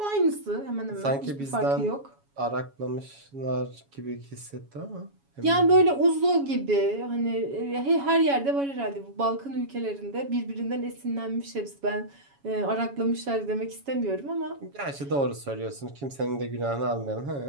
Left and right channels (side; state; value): left; late; 7.2 ms